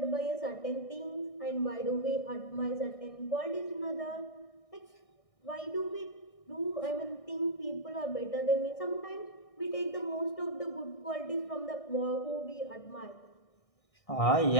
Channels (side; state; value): right; late; 1.6 ms